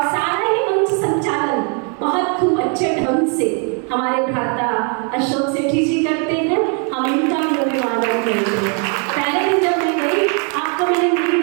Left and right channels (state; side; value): quieter; left; 39.0 dB